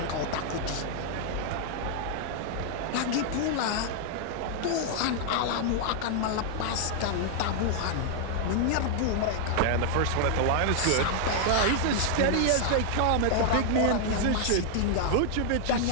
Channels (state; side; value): different; both; correlation 0.00